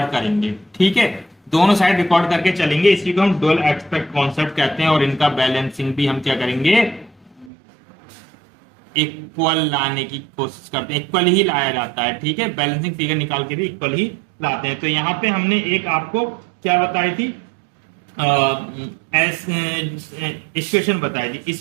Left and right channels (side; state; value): left; drops out; at 7.5 s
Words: करेंगे, ठीक है, दोनों साइड रिकॉर्ड करके चलेंगे। इसी को हम डुअल एस्पेक्ट कॉन्सेप्ट कहते हैं और इनका बैलेंसिंग भी हम क्या करेंगे, इक्वल लाने की कोशिश करते हैं, इक्वल ही लाया जाता है, ठीक है, बैलेंसिंग फिगर निकाल के भी इक्वल ही लाते हैं। तो यहां पे हमने एक आपको क्या बताई थी, इक्वेशन बताई थी,